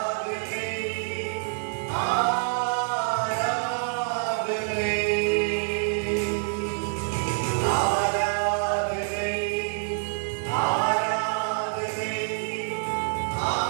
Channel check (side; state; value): left; silent; 60 dB below the other